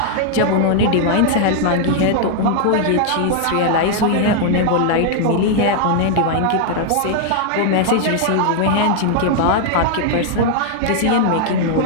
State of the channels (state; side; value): different; both; correlation -0.01